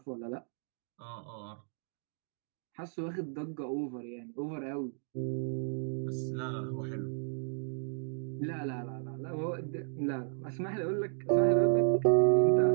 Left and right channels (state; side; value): silent; left; digital silence